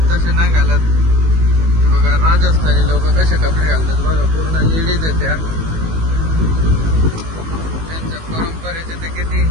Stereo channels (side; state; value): left; late; 19 ms